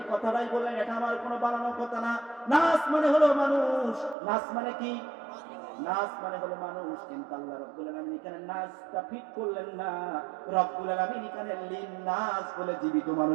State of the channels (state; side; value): drops out; left; at 4.2 s